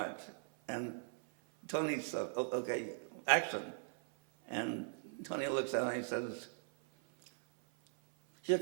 And Tony said, "Okay, action." And Tony looks at me and he says, "Here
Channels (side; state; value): left; silent; 52 dB below the other